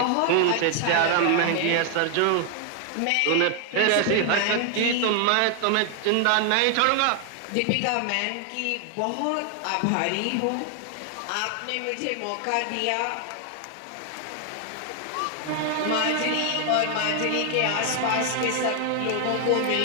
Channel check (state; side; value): different; both; correlation 0.00